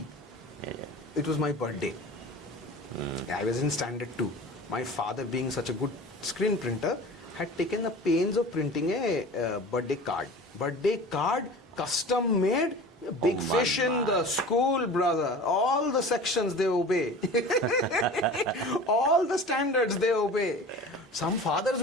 It was my birthday. I was in standard 2. My father, being such a good screen printer, had taken the pains of printing a birthday card. Birthday card, custom made, big fish in the school, brother. All the sections they obey. All the standards they obey. Some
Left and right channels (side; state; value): both; normal; correlation 0.38